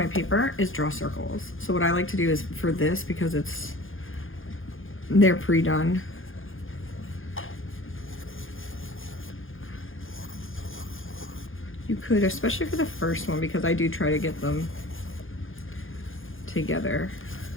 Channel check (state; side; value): late; right; 0.59 ms